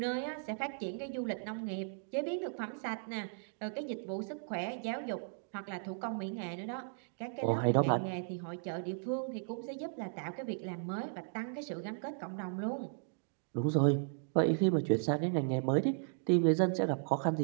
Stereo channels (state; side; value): silent; left; digital silence